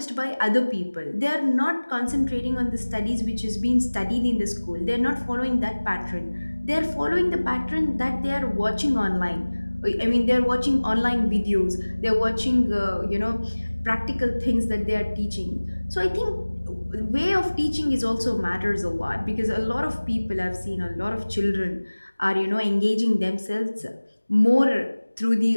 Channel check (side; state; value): both; inverted; correlation -1.00